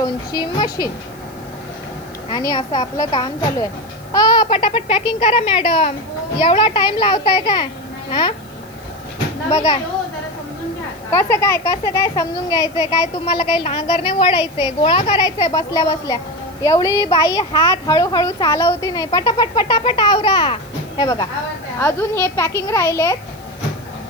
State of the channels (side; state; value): right; noise; hiss, 26 dB below the sound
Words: मशीन आणि असं आपलं काम चालू आहे. पटापट पॅकिंग करा मॅडम, एवढा टाइम लावताय काय? हा बघा कसं काय समजून घ्यायचंय. काय तुम्हाला काही नांगरणे ओढायचंय, गोळा करायचंय बसल्या बसल्या. एवढी बाई हात हळूहळू चालवती नाही. पटापट पटापट आवरा. हे बघा अजून हे पॅकिंग राहिलेत